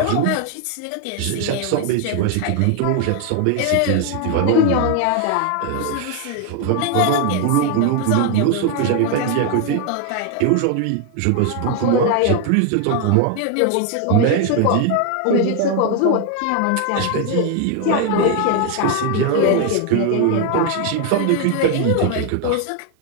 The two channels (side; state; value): both; different; correlation 0.01